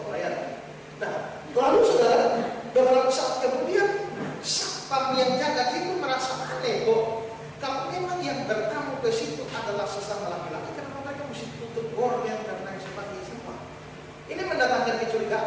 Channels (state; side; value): identical; both; correlation 1.00